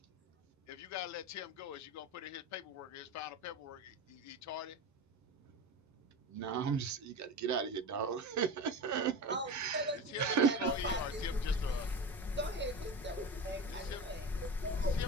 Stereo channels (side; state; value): both; normal; correlation 0.27